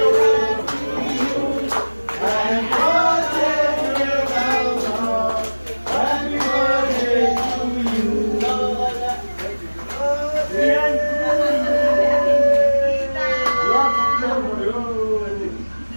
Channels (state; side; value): inverted; both; correlation -1.00